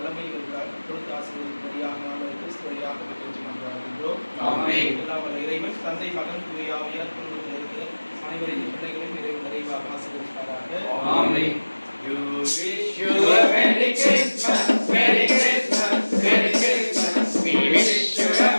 கொடுத்து ஆசீர்வதிக்கும்படியாக நாம் கிறிஸ்து வழியாக பெற்றுகின்றோம். எல்லாம் வல்ல இறைவன் தந்தை மகன் தூய ஆவியார் குடும்பத்தில் இருக்கிற அனைவரின் பிள்ளைகளையும் இறைவன் நிறைவாக ஆசீர்வதிப்பாராக. ஆமென். You wish you a Merry Christmas, Merry Christmas, Merry Christmas. We wish you a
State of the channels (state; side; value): inverted; both; correlation -1.00